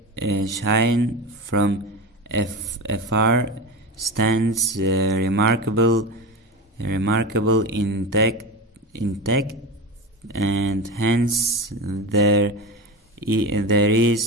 afar, stands remarkable intact, and hence there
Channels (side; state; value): both; normal; correlation 0.24